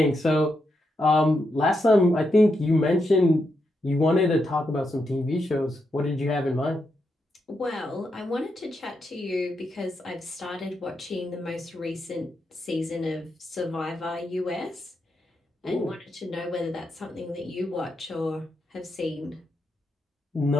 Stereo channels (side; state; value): both; normal; correlation 0.83